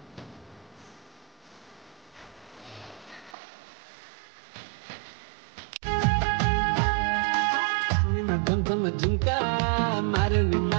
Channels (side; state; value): left; drops out; at 3.4 s